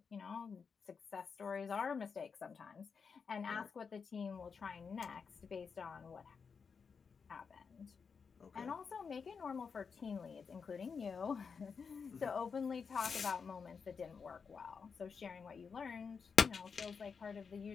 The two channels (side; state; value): right; quieter; 5.7 dB